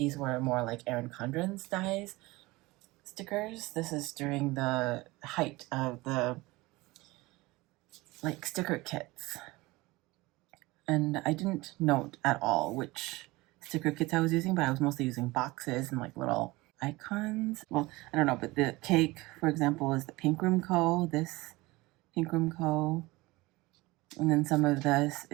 were more like Erin Condren's size stickers. This is during the height of the like sticker kits. And I didn't note at all which sticker kits I was using, but I was mostly using boxes and like little icons. Well, I don't know, but the cake, for example, is the Pink Room Co. This Pink Room Co. And then some of this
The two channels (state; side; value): quieter; left; 21.3 dB